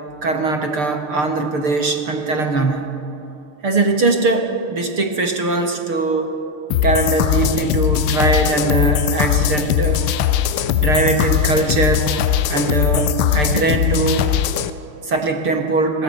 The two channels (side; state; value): left; late; 6.6 ms